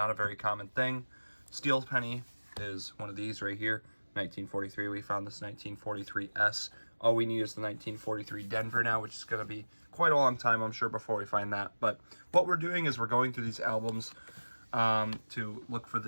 a very common thing. Steel penny is one of these right here. 1943, we found this 1943S. All we need is the 1943 Denver now, which is going to be quite a long time, I'm sure, before we find that. But what we're doing is we're going through these albums to look for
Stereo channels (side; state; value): both; inverted; correlation -1.00